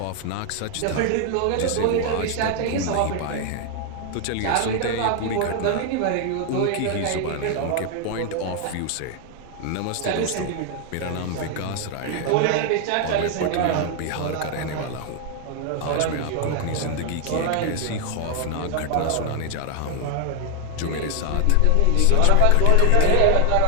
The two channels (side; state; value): both; different; correlation 0.00